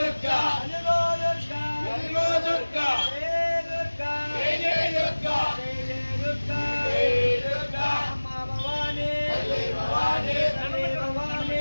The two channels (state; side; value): inverted; both; correlation -1.00